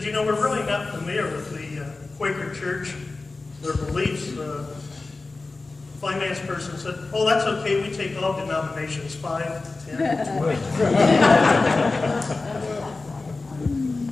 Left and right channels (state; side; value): quieter; right; 3.6 dB